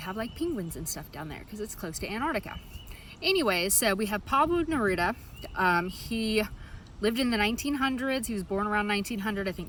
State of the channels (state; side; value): identical; both; correlation 1.00